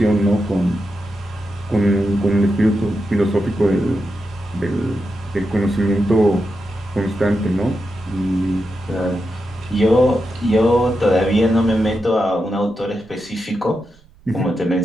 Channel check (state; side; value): noise; right; rumble, 28 dB below the sound